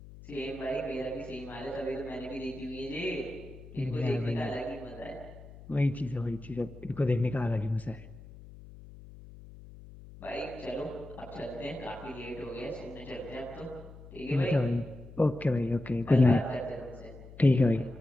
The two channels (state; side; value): noise; left; hum, 17 dB below the sound